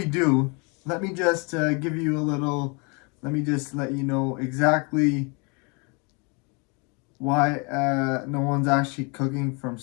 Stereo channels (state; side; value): quieter; right; 32.2 dB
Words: do, let me just give you a little, let me just let you know exactly why no one's actually cooking from